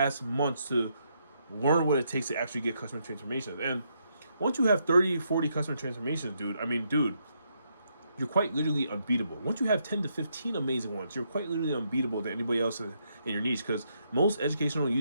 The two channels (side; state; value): both; inverted; correlation -0.77